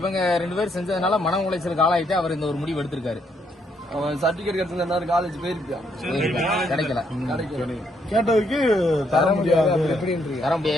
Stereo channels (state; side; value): normal; both; correlation 0.74